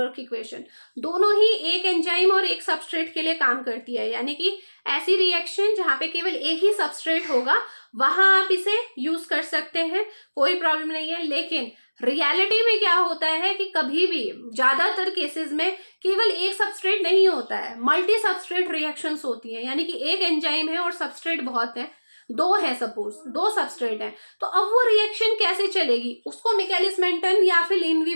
इक्वेशन, दोनों ही एक एंजाइम और एक सबस्ट्रेट के लिए काम करती है। यानी कि ऐसी रिएक्शन जहां पे केवल एक ही सबस्ट्रेट होगा, वहां आप इसे यूज कर सकते हैं, कोई प्रॉब्लम नहीं है। लेकिन रियलिटी में क्या होता है कि कभी भी ज्यादातर केसेस में केवल एक सबस्ट्रेट नहीं होता है, मल्टी सबस्ट्रेट रिएक्शंस होती हैं। यानी कि एक एंजाइम है और सबस्ट्रेट बहुत है, दो है, सपोज दो सबस्ट्रेट है, तो अब वो रिएक्शन कैसे चलेगी, उसको मिकेलिस मेंटन या फिर लीन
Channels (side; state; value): both; inverted; correlation -1.00